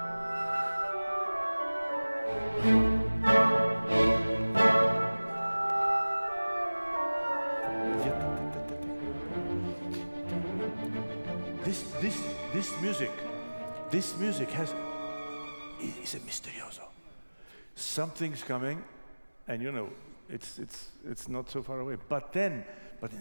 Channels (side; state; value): both; inverted; correlation -1.00